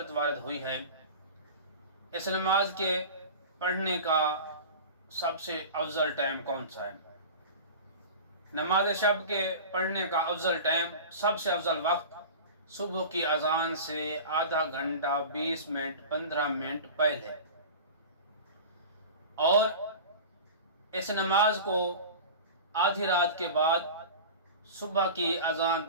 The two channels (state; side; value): inverted; both; correlation -0.34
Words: وارد ہوئی ہے۔ اس نماز کے پڑھنے کا سب سے افضل ٹائم کون سا ہے؟ نماز شب کے پڑھنے کا افضل ٹائم، سب سے افضل وقت صبح کی اذان سے آدھا گھنٹہ 20 منٹ 15 منٹ پہلے، اور اس نماز کو آدھی رات کے بعد صبح کی اذان